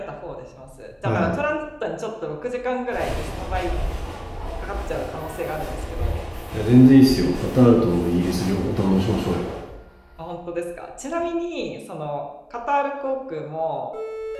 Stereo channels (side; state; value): both; identical; correlation 1.00